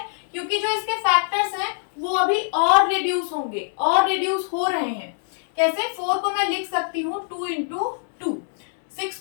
क्योंकि जो इसके फैक्टर्स हैं वो अभी और रिड्यूस होंगे, और रिड्यूस हो रहे हैं। कैसे? 4 को मैं लिख सकती हूँ 2 इंटू 2, 6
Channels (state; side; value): silent; right; 63 dB below the other